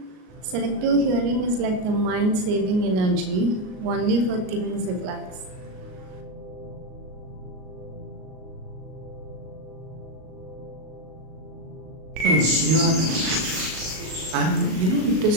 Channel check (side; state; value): left; late; 38 ms